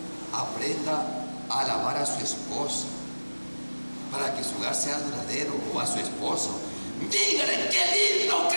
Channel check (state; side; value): inverted; both; correlation -1.00